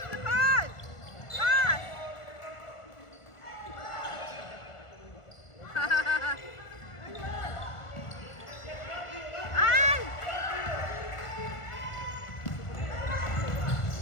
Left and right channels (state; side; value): late; right; 1.5 ms